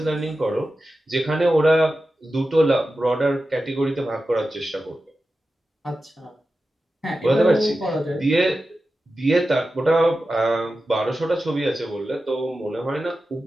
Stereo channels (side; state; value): both; normal; correlation 0.93